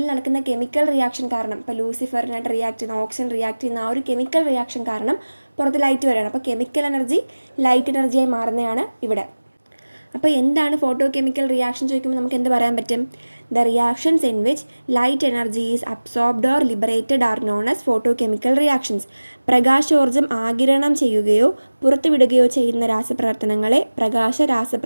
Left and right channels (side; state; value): both; inverted; correlation -1.00